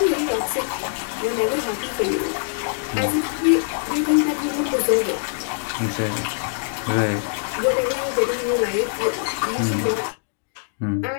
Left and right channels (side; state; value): right; silent; digital silence